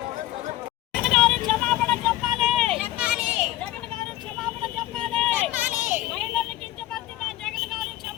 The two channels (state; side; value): quieter; right; 15.6 dB